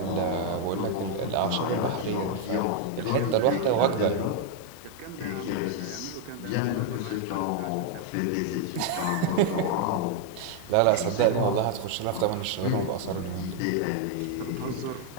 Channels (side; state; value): both; different; correlation 0.00